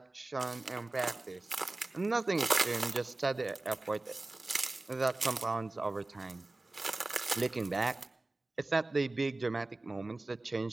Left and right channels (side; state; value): left; quieter; 3.0 dB